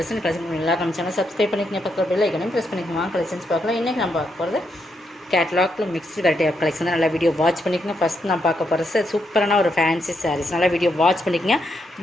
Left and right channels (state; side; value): normal; both; correlation 0.80